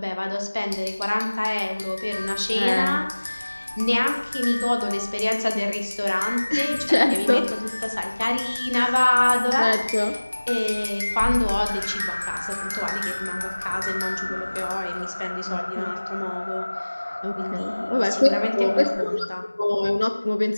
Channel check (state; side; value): inverted; both; correlation -1.00